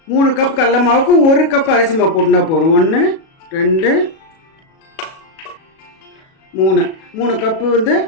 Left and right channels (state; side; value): late; right; 37 ms